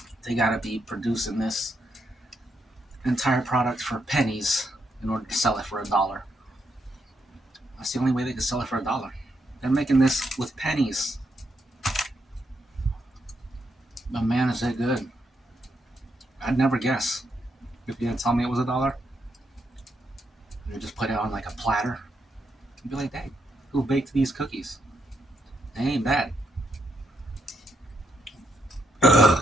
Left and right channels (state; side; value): normal; both; correlation 0.79